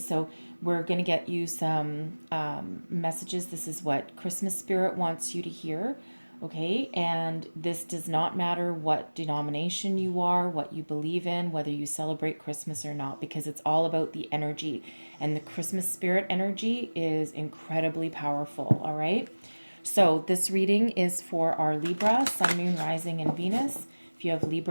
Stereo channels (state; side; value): inverted; both; correlation -1.00